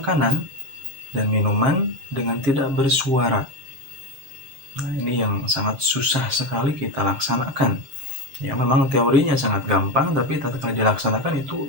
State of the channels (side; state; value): left; late; 6.6 ms